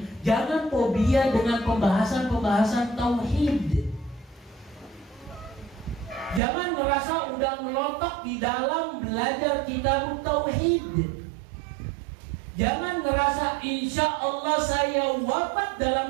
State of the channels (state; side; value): drops out; left; at 6.4 s